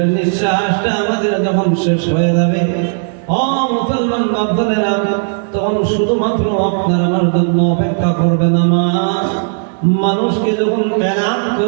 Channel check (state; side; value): silent; left; 67 dB below the other